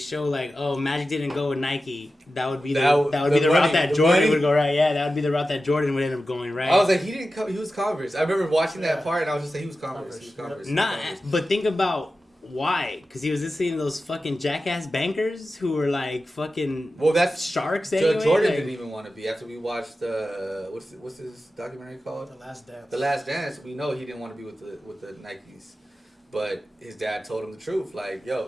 like, oh, Magic didn't go with Nike. That would be the route that Jordan would go, right? Yeah, that would be the route that Jordan would end up going, right? I was like, he didn't come. He was Converse. I remember watching that part, and I was just like, he was Converse. He was Converse. But think about why? Because he was listening to those fucking jackass bankers who were like fucking sharks. Anyway. Jordan didn't even want to be. After we watched what's this documentary called? The Last Dance. The Last Dance. We know he didn't want to be with the Nikes, but his dad told him the truth. Like, yo,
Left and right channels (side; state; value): both; normal; correlation 0.93